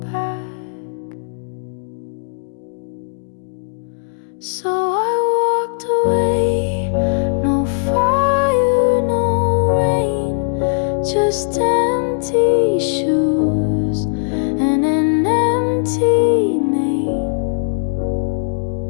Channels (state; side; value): silent; right; digital silence